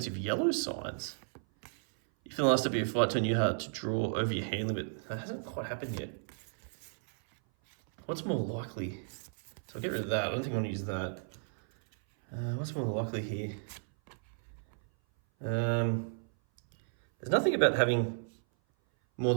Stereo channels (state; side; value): silent; left; 55 dB below the other